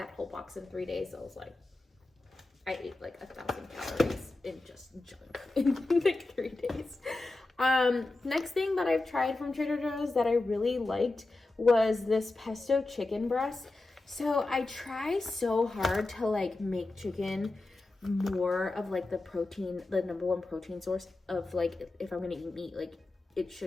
whole box in 3 days. So I was like, I ate like 1,000 calories in just junk in like 3 days. Next thing that I've tried from Trader Joe's that I really liked was this pesto chicken breast. So I try so hard to like make chicken more of like the protein, the number 1 protein source of like, if I'm gonna eat meat, like it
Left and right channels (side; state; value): right; quieter; 3.1 dB